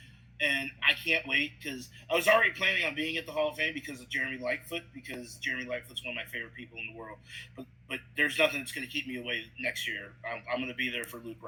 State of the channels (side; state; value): both; identical; correlation 1.00